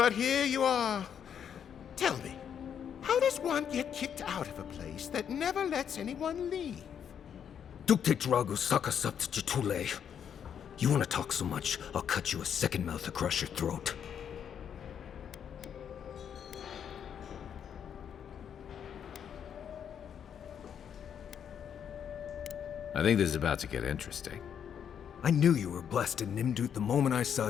here you are. Tell me, how does one get kicked out of a place that never lets anyone leave? Dukte Drago Sakasapt Jitule. You want to talk so much, I'll cut you a second mouth across your throat. I think this is about to get interesting. I knew you were blessed in Nimdut the moment I saw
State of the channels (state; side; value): quieter; right; 8.3 dB